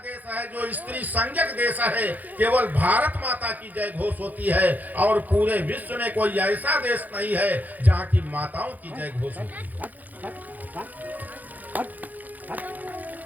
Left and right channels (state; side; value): late; left; 0.082 ms